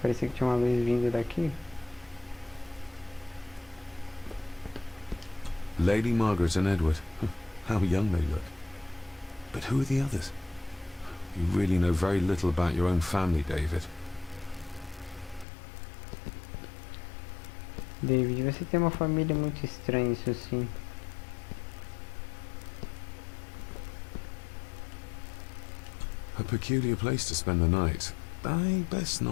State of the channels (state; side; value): drops out; right; at 15.5 s